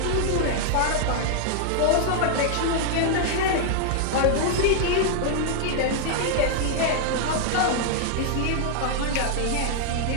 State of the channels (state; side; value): different; both; correlation 0.00